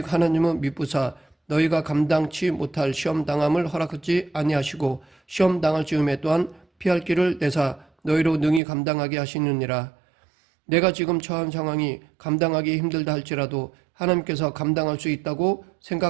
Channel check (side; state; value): left; drops out; at 8.6 s